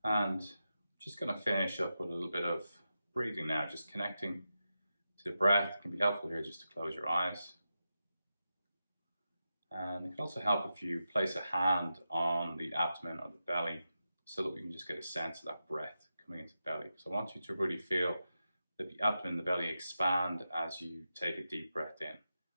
And just going to finish up with a little bit of breathing now, just connecting to the breath. It can be helpful here just to close your eyes. And it can also help if you place a hand on the abdomen or the belly so that we can just get a sense of that breath coming into the belly. So I want you to really feel that the abdomen and the belly expand as you take a deep breath in.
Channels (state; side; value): inverted; both; correlation -0.90